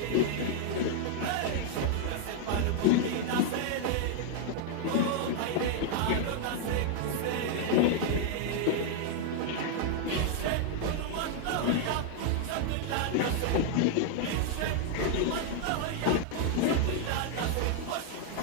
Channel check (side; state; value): both; different; correlation 0.00